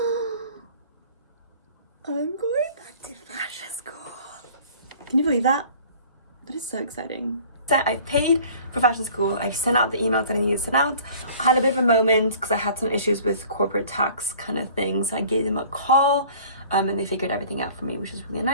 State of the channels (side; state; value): both; inverted; correlation -0.49